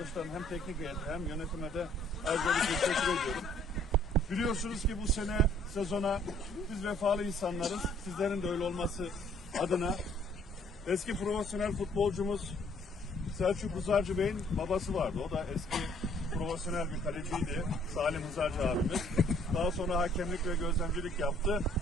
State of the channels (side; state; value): both; normal; correlation 0.61